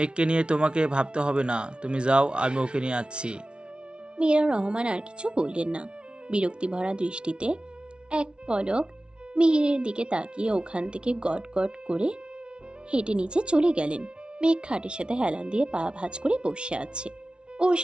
নিয়ে তোমাকে ভাবতে হবে না, তুমি যাও, আমি ওকে নিয়ে আসছি। মীরা রহমান আর কিছু বললেন না। বিরক্তি ভরা দৃষ্টিতে এক পলক মিহিরের দিকে তাকিয়ে ওখান থেকে গট গট করে হেঁটে নিচে চলে গেলেন। মেঘ খাটের সাথে হেলান দিয়ে পা ভাঁজ করে বসে আছে। ওর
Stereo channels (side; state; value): left; late; 0.057 ms